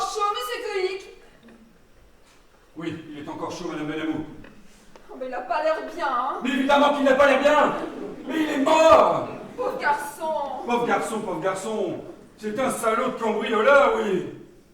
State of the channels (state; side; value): identical; both; correlation 1.00